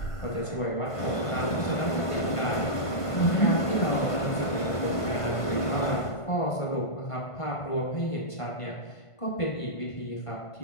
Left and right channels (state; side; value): late; right; 1.5 ms